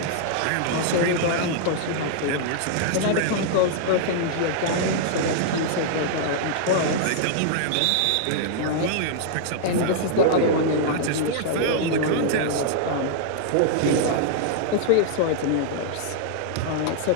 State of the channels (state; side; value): different; both; correlation -0.01